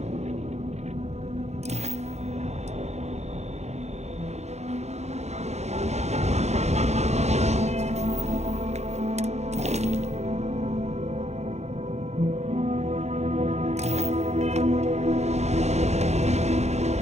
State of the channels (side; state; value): left; late; 0.32 ms